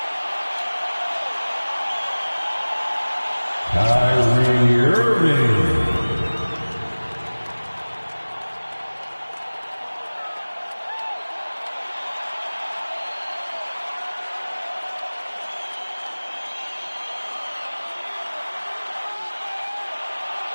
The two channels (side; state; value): both; inverted; correlation -1.00